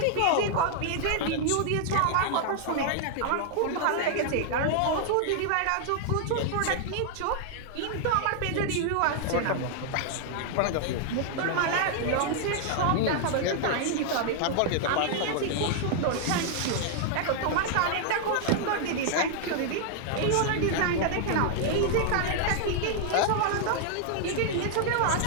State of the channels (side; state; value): both; different; correlation -0.01